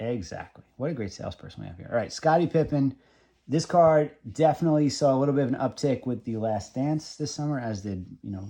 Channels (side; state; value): both; identical; correlation 1.00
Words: What a great salesperson we have here. All right, Scottie Pippen. This card definitely saw a little bit of an uptick with the Last Dance this summer, as did,